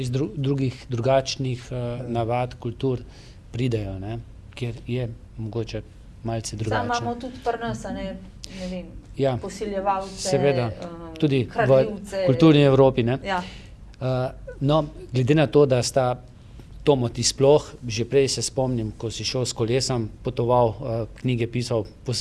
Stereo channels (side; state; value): both; identical; correlation 1.00